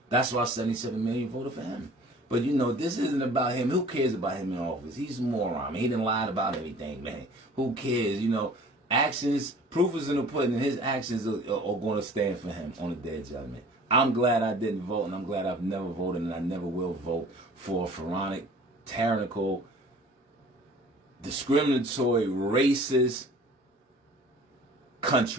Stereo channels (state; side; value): normal; both; correlation 0.48